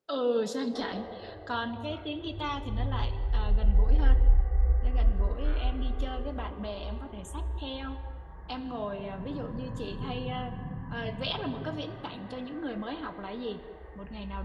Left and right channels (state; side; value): identical; both; correlation 1.00